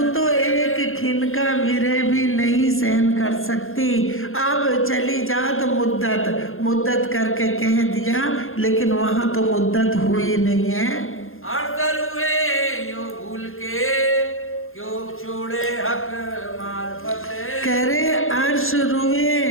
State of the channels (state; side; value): late; right; 0.60 ms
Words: तो एक खिन का विरह भी नहीं सहन कर सकती, अब चली जात मुद्दत, मुद्दत करके कह दिया, लेकिन वहां तो मुद्दत हुई नहीं है। अड़सर हुए यो भूल के क्यों छोड़े हक मार्फत। कह रहे अर्श रुए